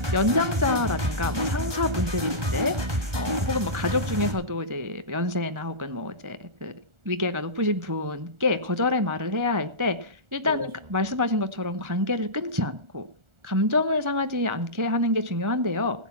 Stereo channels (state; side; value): late; left; 1.4 ms